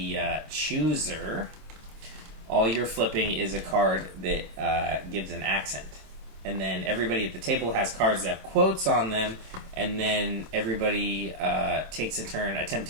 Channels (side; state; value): left; late; 27 ms